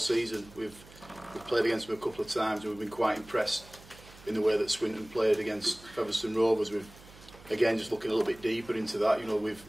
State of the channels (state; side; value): noise; right; hum, 21 dB below the sound